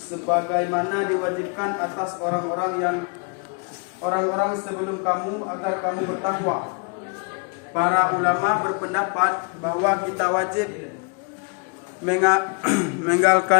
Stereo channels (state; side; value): quieter; right; 37.1 dB